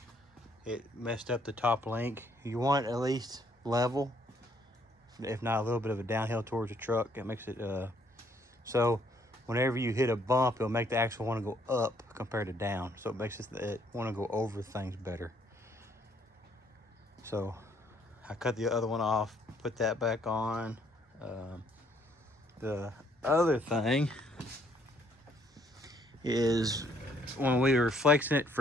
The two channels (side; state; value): both; normal; correlation 0.66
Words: It messed up the top link. You want at least level, if not a little bit of a downhill towards the truck. It makes it so whenever you hit a bump, it'll make the axle want to go up compared to down. So it makes it want to go over things better. So I cut the other one off, put that back on. The other thing is when we were flexing it